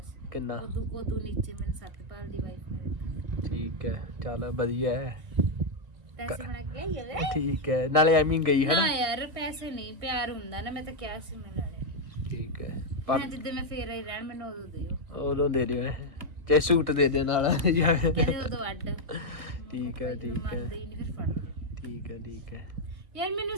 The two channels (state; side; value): late; left; 1.3 ms